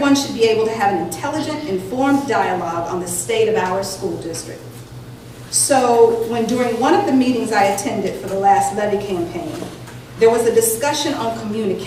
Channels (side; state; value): both; identical; correlation 1.00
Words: should be able to have an intelligent, informed dialogue on the state of our school district. So when during one of the meetings I attended for the last levy campaign, there was a discussion on